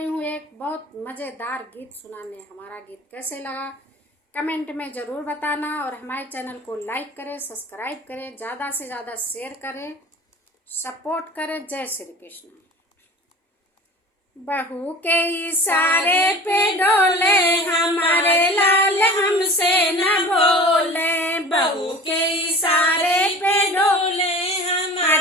हूँ एक बहुत मज़ेदार गीत सुनाने। हमारा गीत कैसे लगा कमेंट में ज़रूर बताना और हमारे चैनल को लाइक करें, सब्सक्राइब करें, ज़्यादा से ज़्यादा शेयर करें, सपोर्ट करें। जय श्री कृष्ण। बहू के इशारे पे डोले हमारे लाल, हमसे न बोले। बहू के इशारे पे डोले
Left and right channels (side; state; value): both; normal; correlation 0.39